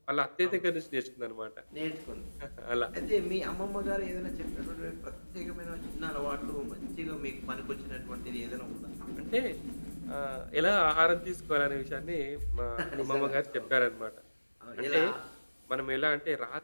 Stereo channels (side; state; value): both; inverted; correlation -1.00